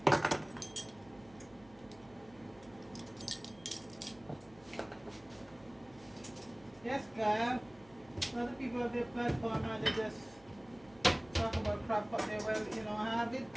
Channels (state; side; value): noise; right; hum, 25 dB below the sound